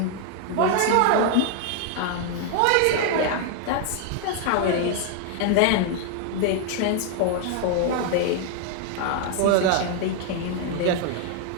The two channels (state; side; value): different; both; correlation 0.00